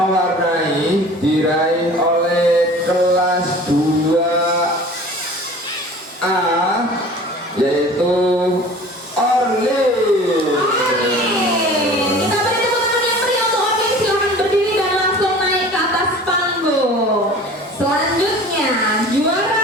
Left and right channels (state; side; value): normal; both; correlation 0.43